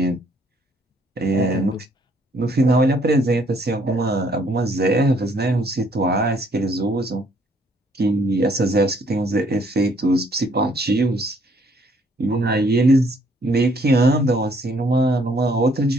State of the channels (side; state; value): both; normal; correlation 0.65